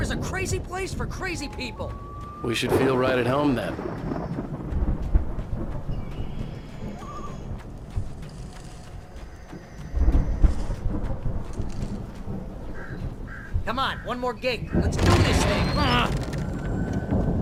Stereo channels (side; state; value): both; identical; correlation 1.00